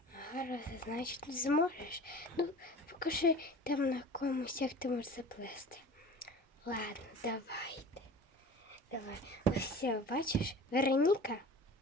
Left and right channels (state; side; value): normal; both; correlation 0.40